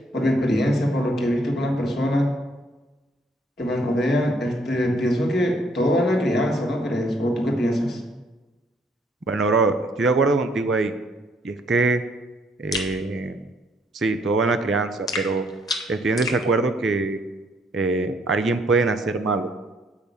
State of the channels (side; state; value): both; normal; correlation 0.67